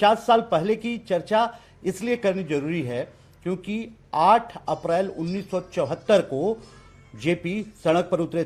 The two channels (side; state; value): both; identical; correlation 1.00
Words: साल पहले की चर्चा इसलिए करनी जरूरी है क्योंकि 8 अप्रैल 1974 को जेपी सड़क पर उतरे